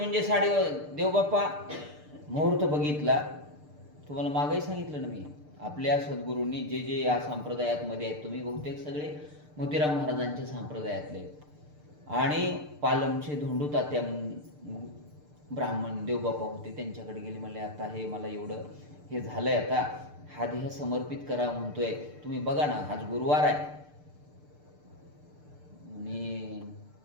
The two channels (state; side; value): late; left; 6.7 ms